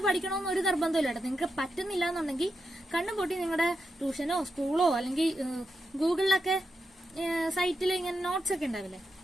പഠിക്കണമെന്ന് ഒരു നിർബന്ധമില്ല. നിങ്ങൾക്ക് പറ്റുന്നില്ല എന്നുണ്ടെങ്കിൽ കണ്ണും പൊട്ടി നിങ്ങളുടെ ട്യൂഷനോ സ്കൂളോ അല്ലെങ്കിൽ ഗൂഗിളിലൊക്കെ സൈറ്റിൽ ഇങ്ങനെ നോട്ട്സ് ഒക്കെ ഉണ്ടാവില്ലേ,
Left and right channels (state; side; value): normal; both; correlation 0.86